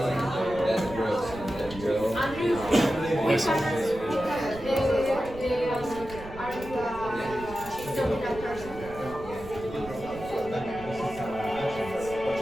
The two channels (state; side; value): noise; right; rumble, 14 dB below the sound